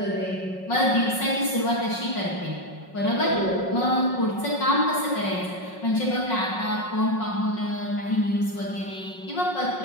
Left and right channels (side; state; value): right; late; 5.5 ms